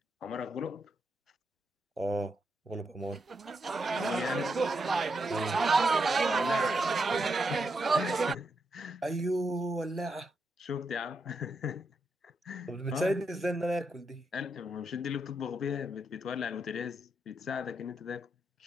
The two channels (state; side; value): normal; both; correlation 0.82